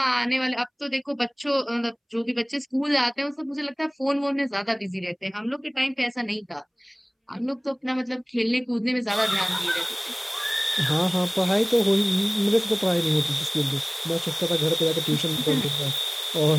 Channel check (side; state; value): both; identical; correlation 1.00